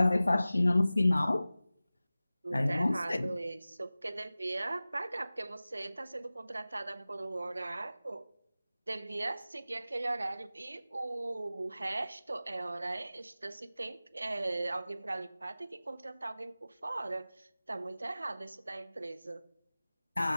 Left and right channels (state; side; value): inverted; both; correlation -0.97